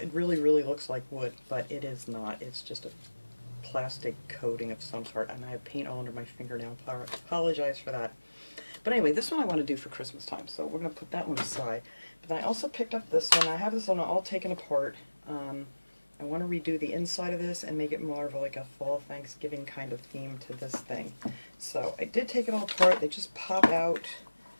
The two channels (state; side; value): inverted; both; correlation -1.00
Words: really looks like wood, but it is not. It's just a plastic coating of some sort, and I have paint all under my fingernail. Apologize for that. But anyway, this one I want to do for Christmas time, so we're going to put that one aside. But I also picked up this one. I have this one all taken apart. I want to redo the inside of this and make it more of like a fall Thanksgiving kind of theme to this thing. So I did take it all apart. They just pop out